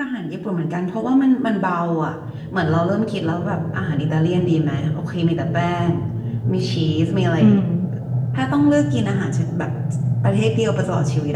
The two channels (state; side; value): identical; both; correlation 1.00